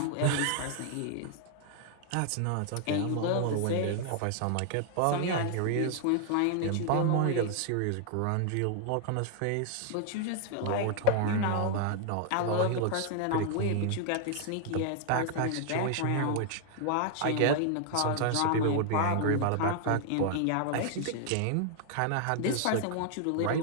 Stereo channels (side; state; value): both; different; correlation 0.00